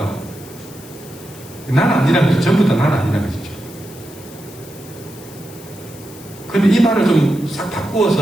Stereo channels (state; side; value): noise; left; hiss, 19 dB below the sound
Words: 난 아니라는 거죠. 전부 다 난 아니라는 것이죠. 그런데 이 말을 좀 싹